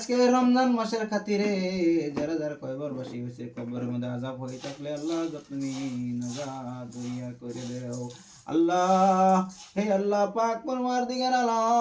রমজান মাসের খাতিরে যারা যারা কয়বার বাসি হয়েছে, কবরের মধ্যে আযাব হয়ে থাকলে আল্লাহ তুমি নাজাত দরিয়া করে দাও আল্লাহ। হে আল্লাহ পাক পরওয়ারদিগার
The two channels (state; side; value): identical; both; correlation 1.00